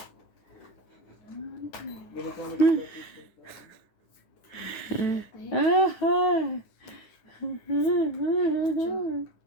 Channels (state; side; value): late; right; 9.2 ms